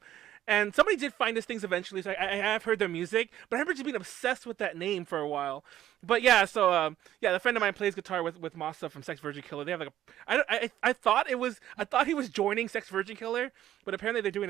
And somebody did find us things eventually, so I have heard their music, but I remember just being obsessed with that name for a while. But yeah, so the friend of mine plays guitar with Masa from Sex Virgin Killer. They have like I thought he was joining Sex Virgin Killer, but apparently they're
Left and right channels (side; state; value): left; quieter; 12.3 dB